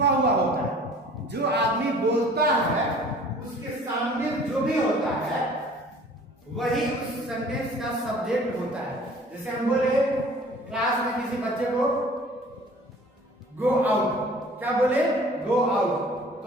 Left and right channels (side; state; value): both; normal; correlation 0.49